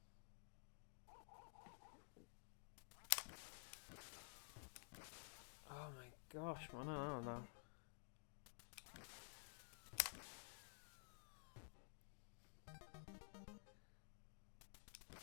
Oh my gosh, man, I don't know.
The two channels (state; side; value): silent; right; digital silence